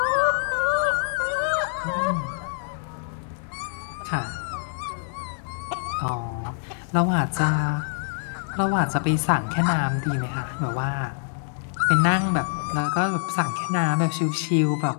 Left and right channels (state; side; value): silent; right; 62 dB below the other